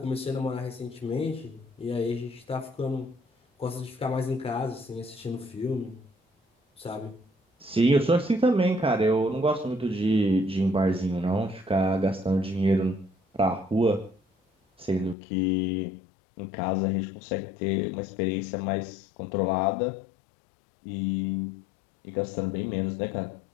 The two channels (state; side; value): drops out; right; at 15.2 s